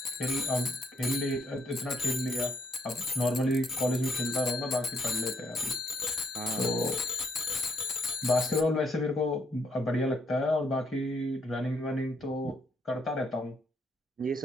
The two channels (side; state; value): both; normal; correlation 0.72